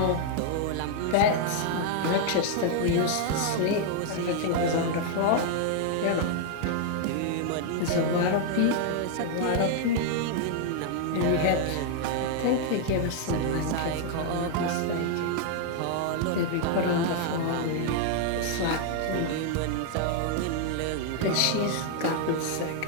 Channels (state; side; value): different; both; correlation 0.00